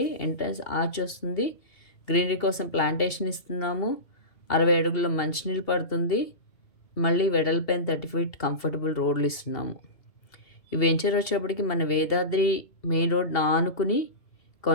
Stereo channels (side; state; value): right; late; 2.7 ms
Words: ఎంట్రన్స్ ఆర్చ్ వస్తుంది. గ్రీనరీ కోసం ప్లాంటేషన్ ఇస్తున్నాము. 60 అడుగుల మంచినీళ్ళు పడుతుంది. మళ్ళీ వెడల్పైన 30 ఫీట్ కంఫర్టబుల్ రోడ్లు ఇస్తున్నాము. ఈ వెంచర్ వచ్చేటప్పటికి మన వేదాద్రి మెయిన్ రోడ్ ఆనుకుని